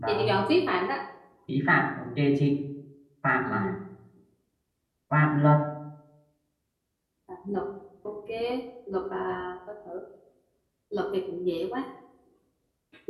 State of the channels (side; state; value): both; identical; correlation 1.00